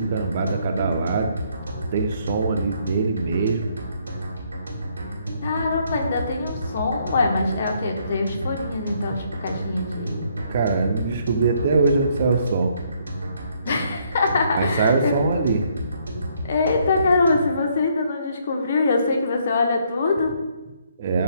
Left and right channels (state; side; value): inverted; both; correlation -0.69